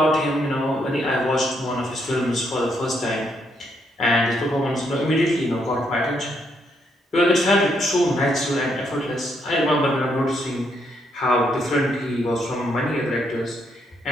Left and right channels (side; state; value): both; normal; correlation 0.75